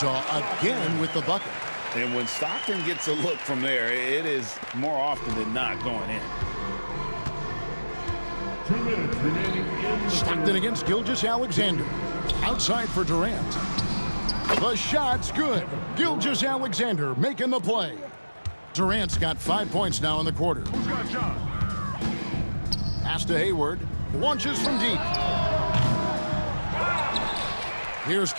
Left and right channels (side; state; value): both; inverted; correlation -1.00